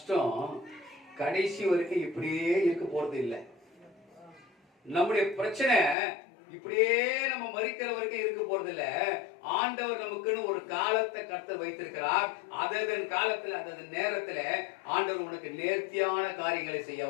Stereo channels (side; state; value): right; drops out; at 6.0 s